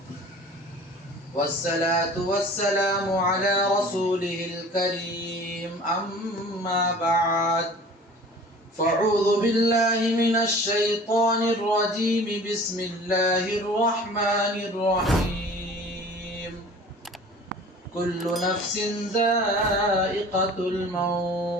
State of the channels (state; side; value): normal; both; correlation 0.44